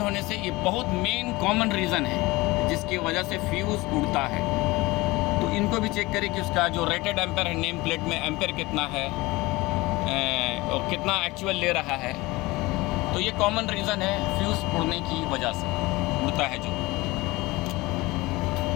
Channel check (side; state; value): right; quieter; 21.4 dB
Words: होने से ये बहुत मेन कॉमन रीज़न है जिसकी वजह से फ्यूज़ उड़ता है। तो इनको भी चेक करें कि उसका जो रेटेड एम्पेयर है, नेम प्लेट में एम्पेयर कितना है और कितना एक्चुअल ले रहा है। तो ये कॉमन रीज़न है फ्यूज़ उड़ने की वजह से, उड़ता है जो।